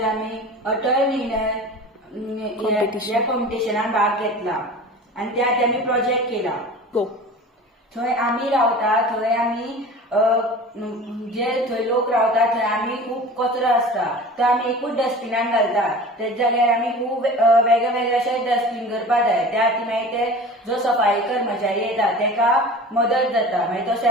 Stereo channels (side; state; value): both; normal; correlation 0.38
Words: आमी अटल निर्णय ह्या कॉम्पिटिशनान भाग घेतला आनी त्यात आमी प्रोजेक्ट केला. थंय आमी रावता, थंय आमी जे थंय लोक रावता थंय आमी खूब कचरो आसता तो आमी एकूच डस्टबिनान घालता. तेच जाग्यार आमी खूब वेगळे वेगळे अशे डस्टबीन करपाक जाय. त्या खातीर मागीर ते जो सफाई कर्मचारी येता तेका मदत जाता, मागीर तो